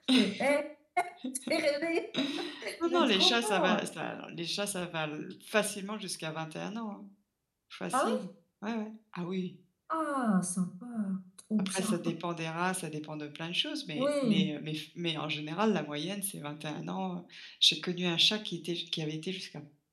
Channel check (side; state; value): both; identical; correlation 1.00